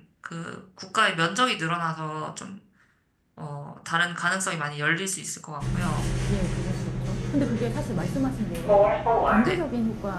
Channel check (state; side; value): identical; both; correlation 1.00